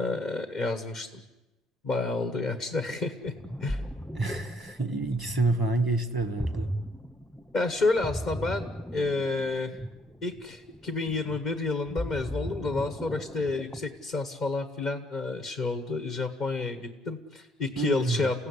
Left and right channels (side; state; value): both; normal; correlation 0.68